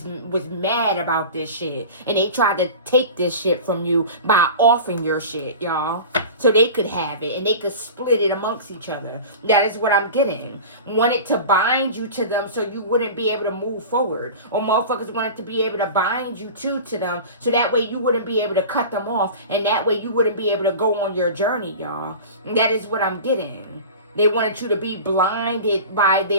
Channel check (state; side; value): inverted; both; correlation -0.34